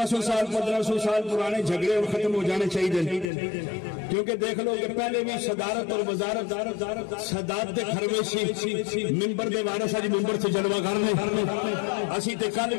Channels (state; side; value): drops out; right; at 3.2 s